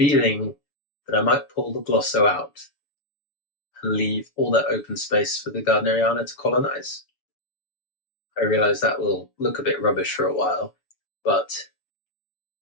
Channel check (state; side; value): late; right; 7.0 ms